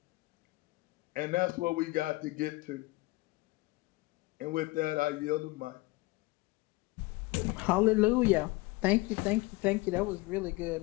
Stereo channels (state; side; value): quieter; right; 22.5 dB